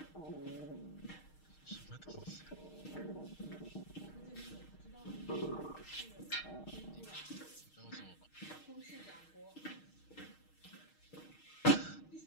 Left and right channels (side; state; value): right; late; 6.4 ms